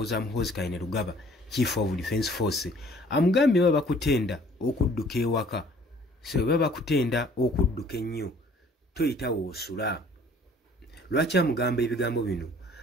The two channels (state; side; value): normal; both; correlation 0.55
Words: Muhoozi Kainerugaba Chief of Defence Force amugambye baba bakutenda okudduka ewaka, so baba bakutenda okudduka ennyo toyita woosula. Lwaki amugamba ebigambo bino?